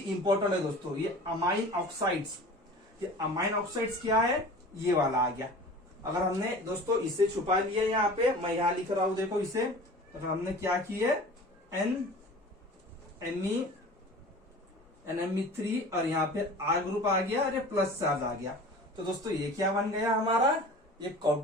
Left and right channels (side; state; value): both; normal; correlation 0.40